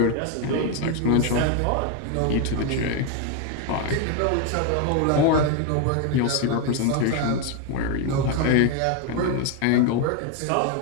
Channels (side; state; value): both; different; correlation 0.01